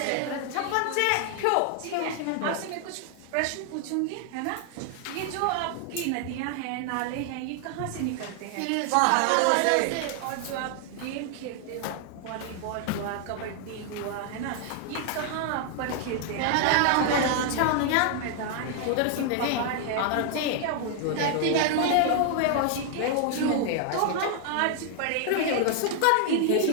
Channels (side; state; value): both; different; correlation 0.00